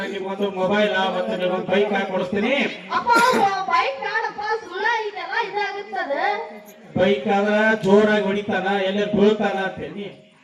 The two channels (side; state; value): both; identical; correlation 1.00